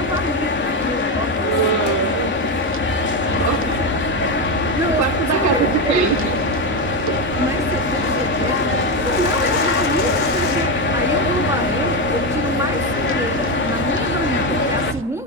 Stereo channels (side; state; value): both; normal; correlation 0.11